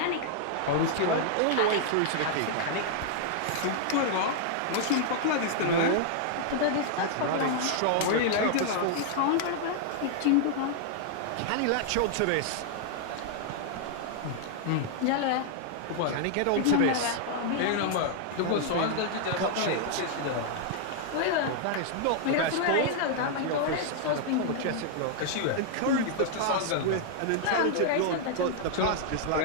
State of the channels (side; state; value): both; different; correlation -0.01